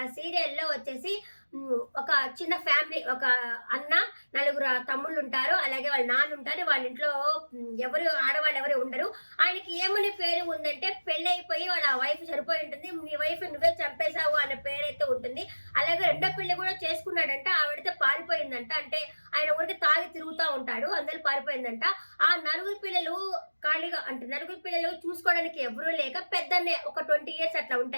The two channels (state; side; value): inverted; both; correlation -1.00